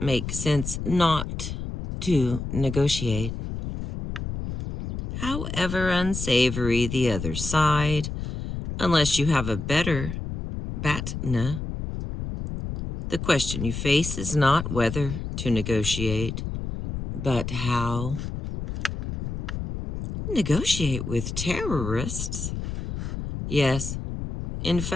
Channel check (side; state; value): left; noise; rumble, 6 dB below the sound